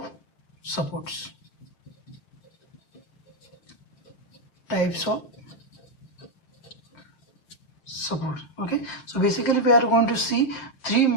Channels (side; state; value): right; late; 7.2 ms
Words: supports. Types of support. Okay, so basically we are going to see three